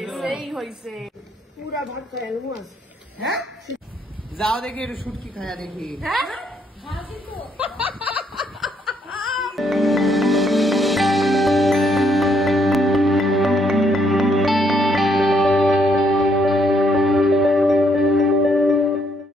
সেই হয়েছে, পুরা ভাত খায় মাছ। হ্যাঁ যাও দেখি একটু শুটকি খায়া দেখি। হ্যাঁ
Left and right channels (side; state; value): both; normal; correlation 0.72